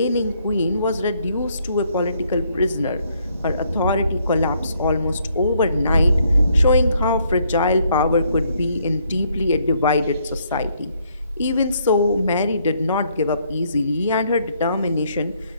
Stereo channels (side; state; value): both; inverted; correlation -0.70